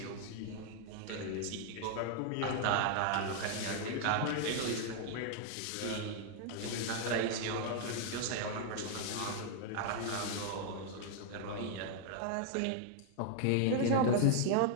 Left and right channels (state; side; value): different; both; correlation 0.00